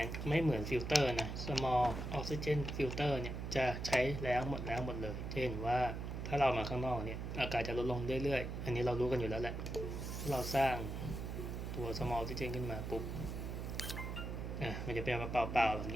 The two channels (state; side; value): noise; right; hum, 5 dB below the sound